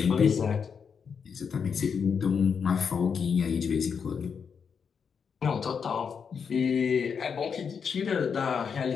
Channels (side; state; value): right; quieter; 6.5 dB